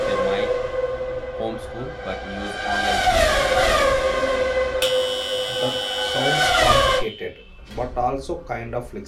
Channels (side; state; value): both; identical; correlation 1.00